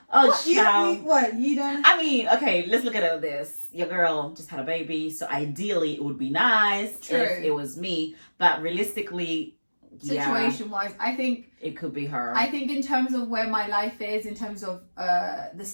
Oh, What, child. what, you don't? I mean, okay, let's look at it like this. Your girl just had a baby, so ideally it would be nice True. if it was me. But realistically, Situation wise, I think it could be her. I think in terms of where my life is, in terms of the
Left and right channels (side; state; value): both; inverted; correlation -1.00